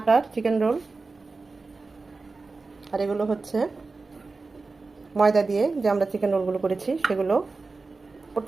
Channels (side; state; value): left; quieter; 3.9 dB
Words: চিকেন রোল, আর এগুলো হচ্ছে ময়দা দিয়ে যে আমরা চিকেন রোলগুলো করেছি সেগুলো।